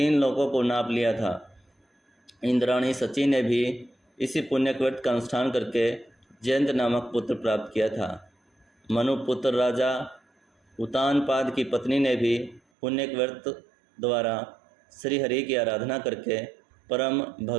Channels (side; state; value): left; drops out; at 12.6 s